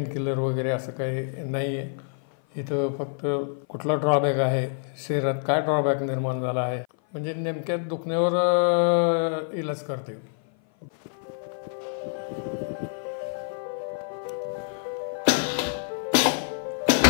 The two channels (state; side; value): silent; right; 56 dB below the other